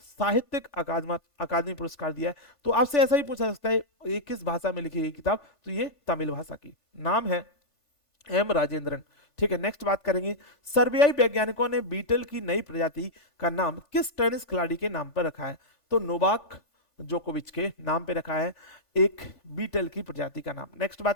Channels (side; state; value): right; late; 1.5 ms